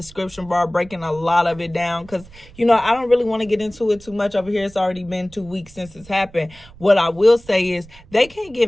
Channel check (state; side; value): noise; right; rumble, 22 dB below the sound